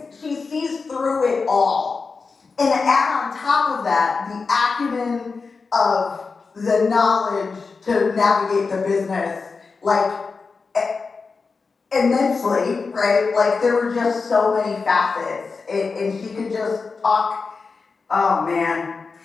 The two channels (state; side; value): quieter; right; 4.6 dB